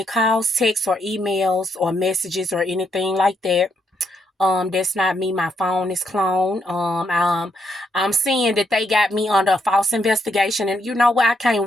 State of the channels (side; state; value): both; normal; correlation 0.77